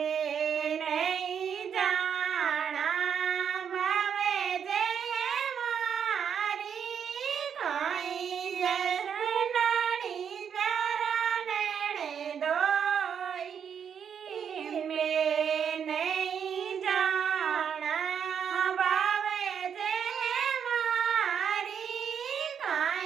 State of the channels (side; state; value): left; quieter; 7.7 dB